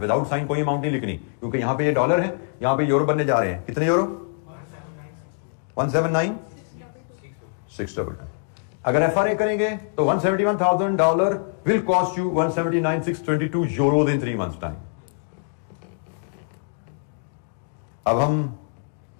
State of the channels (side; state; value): right; silent; 62 dB below the other